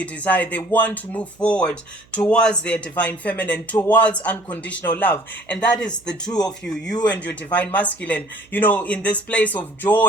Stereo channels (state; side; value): noise; right; hum, 29 dB below the sound